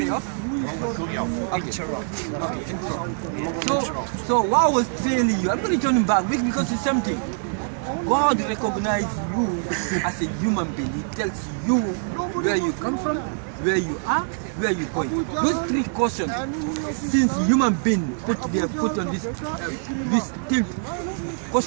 off? So what I was telling you, I'm going to turn him back because it's something. God recognizes you as a human being. He tells you where you come from, where you are, where you're going. Those three questions, since human being put their foot on this, we still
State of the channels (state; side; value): silent; left; digital silence